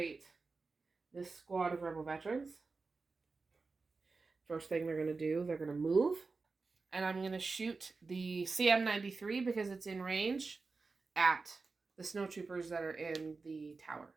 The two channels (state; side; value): quieter; left; 4.1 dB